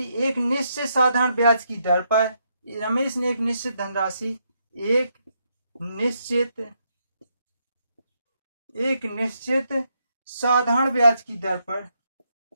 एक निश्चित साधारण ब्याज की दर पर, रमेश ने एक निश्चित धनराशि एक निश्चित साधारण ब्याज की दर पर,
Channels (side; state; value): both; inverted; correlation -0.78